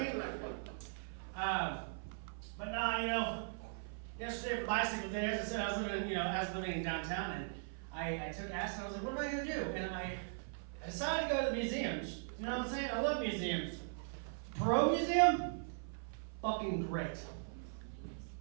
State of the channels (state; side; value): silent; left; 51 dB below the other